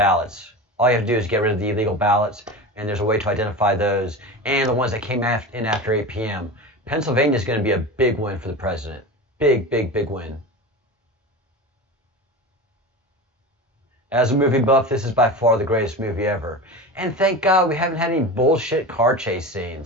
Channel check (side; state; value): both; normal; correlation 0.28